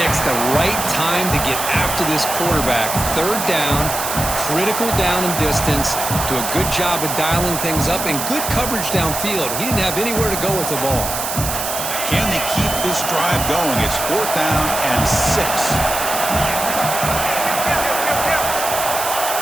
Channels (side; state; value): right; noise; hiss, 4 dB below the sound